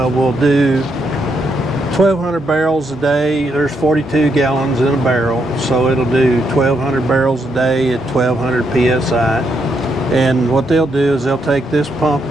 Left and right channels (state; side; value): normal; both; correlation 0.78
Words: do 1,200 barrels a day. There's 42 gallons in a barrel, so it'll do 1,200 barrels a day at 1,200 psi. And what they'll do is they'll take this pump